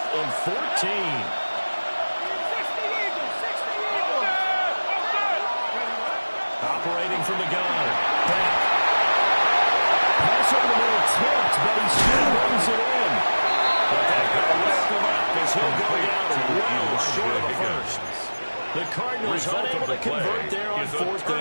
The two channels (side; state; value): both; inverted; correlation -1.00